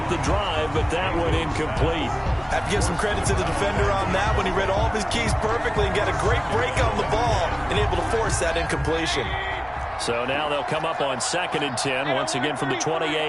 the drive, but that one incomplete. Have to give some credit to the defender on that when he read all of his keys perfectly and got a great break on the ball and able to force that incompletion. So now they'll come up on 2nd and 10, once again from the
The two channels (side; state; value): both; identical; correlation 1.00